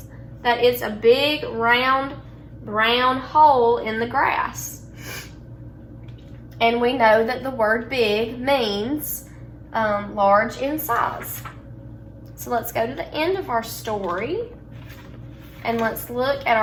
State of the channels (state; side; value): identical; both; correlation 1.00